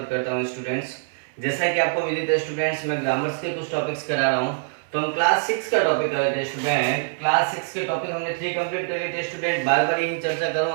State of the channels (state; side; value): silent; left; 63 dB below the other